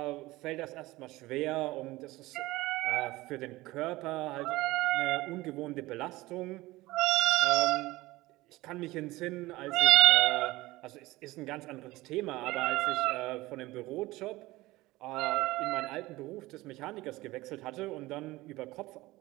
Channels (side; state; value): left; quieter; 19.3 dB